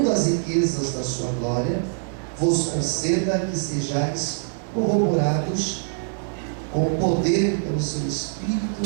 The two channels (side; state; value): left; silent; digital silence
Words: as riquezas da sua glória, vos conceda que sejais corroborados com o poder pelo seu